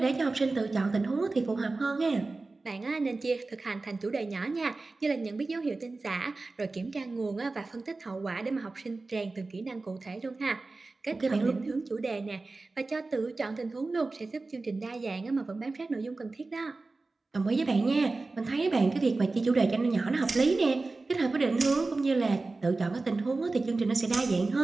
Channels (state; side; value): quieter; left; 3.5 dB